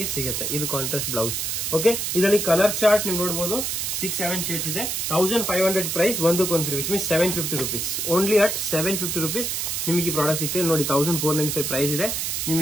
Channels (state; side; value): noise; right; hiss, 1 dB below the sound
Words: ಸಿಗುತ್ತೆ. ಇದು ಕಾಂಟ್ರಾಸ್ಟ್ ಬ್ಲೌಸ್. ಓಕೆ, ಇದರಲ್ಲಿ ಕಲರ್ ಚಾರ್ಟ್ ನೀವು ನೋಡಬಹುದು 6-7 ಶೇಡ್ಸ್ ಇದೆ. 1500 ಪ್ರೈಸ್, ಒಂದಕ್ಕೊಂದು free, which means 750 rupees. Only at 750 rupees ನಿಮಗೆ ಈ ಪ್ರಾಡಕ್ಟ್ ಸಿಗ್ತದೆ. ನೋಡಿ 1495 ಪ್ರೈಸ್ ಇದೆ,